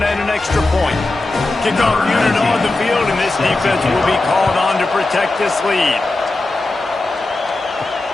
and an extra point. Kickoff unit on the field, and this defense will be called on to protect this lead.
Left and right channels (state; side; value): quieter; right; 3.0 dB